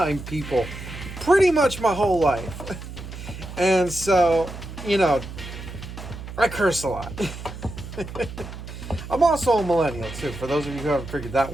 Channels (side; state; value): right; noise; hum, 11 dB below the sound